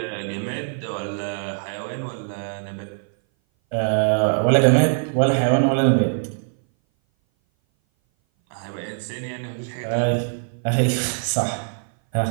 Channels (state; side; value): silent; left; 59 dB below the other